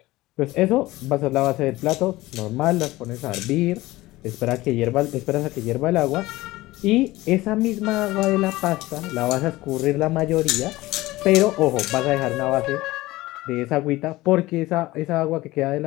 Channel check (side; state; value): right; quieter; 18.5 dB